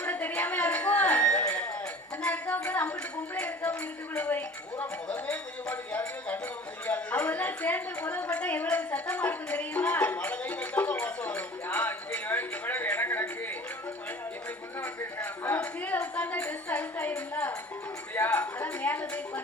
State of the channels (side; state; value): both; normal; correlation 0.44